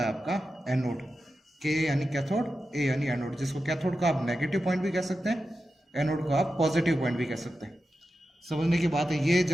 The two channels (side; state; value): both; normal; correlation 0.91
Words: आपका एनोड। के यानी कैथोड, ए यानी एनोड, जिसको कैथोड का आप नेगेटिव पॉइंट भी कह सकते हैं, एनोड को आप पॉजिटिव पॉइंट भी कह सकते हैं। समझने की बात है, ये